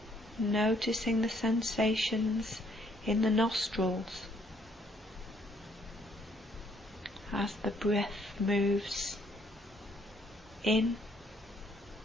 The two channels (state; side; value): normal; both; correlation 0.67